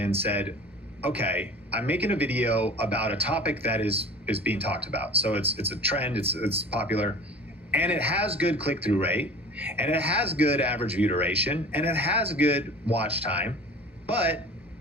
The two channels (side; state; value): both; normal; correlation 0.40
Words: said, okay, I'm making a video about a topic that is being talked about. So it's a trend, it's popular, and it has good click-through rate, and it has good average view duration, and it has good watch time, but